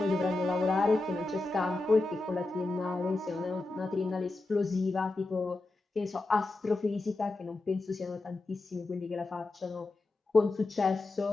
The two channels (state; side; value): quieter; right; 3.1 dB